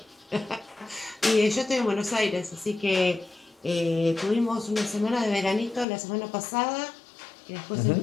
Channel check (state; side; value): drops out; right; at 5.9 s